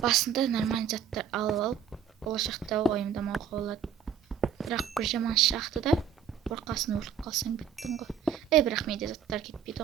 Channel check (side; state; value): left; quieter; 7.9 dB